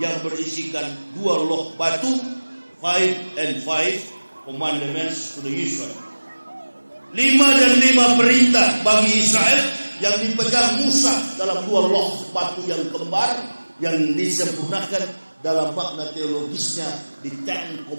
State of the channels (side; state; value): both; inverted; correlation -1.00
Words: berisikan 2 loh batu, 5 and 5 commandments to the Israel. 5 dan 5 perintah bagi Israel yang dipegang Musa dalam 2 loh batu yang kembar yang disempurnakan dalam makna teologisnya di Ten